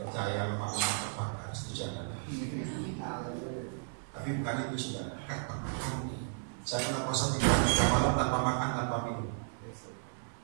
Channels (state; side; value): silent; left; digital silence